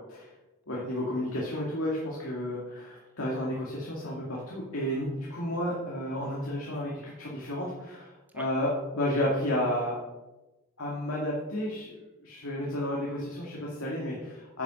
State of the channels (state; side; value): normal; both; correlation 0.29